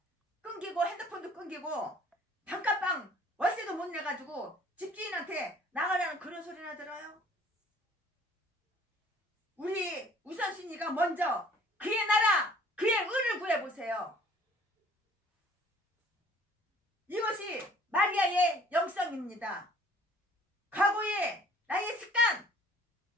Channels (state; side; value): normal; both; correlation 0.54